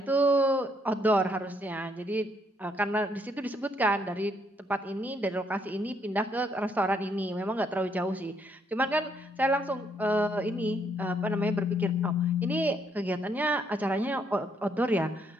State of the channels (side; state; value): both; normal; correlation 0.71